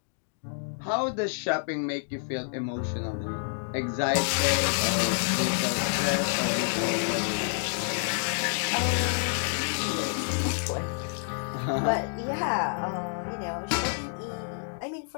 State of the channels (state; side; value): silent; right; digital silence